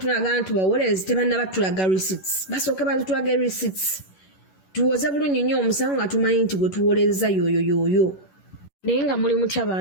nti bawolezi tebannaba tulaga receipts. Basooke batulaga receipts. Tuwoze bulungi nnyo omusango nga tumanyi nti gwe tuwoleza yoyo. Naye nga muli mutya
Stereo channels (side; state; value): right; late; 11 ms